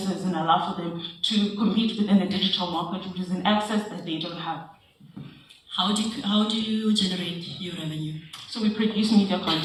and allow for them to compete within the digital market, which is an access that they don't have. How do you generate your revenue? So we produce media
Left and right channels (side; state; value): both; identical; correlation 1.00